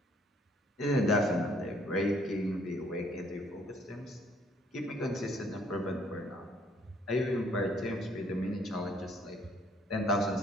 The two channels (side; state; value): both; normal; correlation 0.63